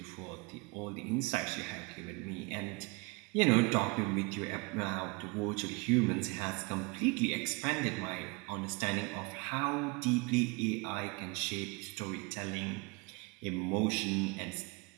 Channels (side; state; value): left; quieter; 28.6 dB